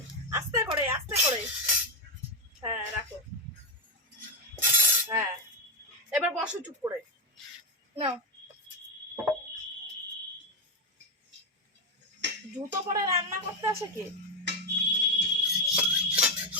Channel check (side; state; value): both; normal; correlation 0.07